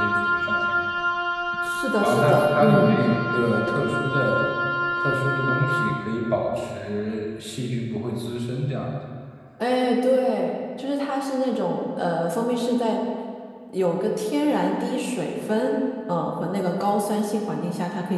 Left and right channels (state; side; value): identical; both; correlation 1.00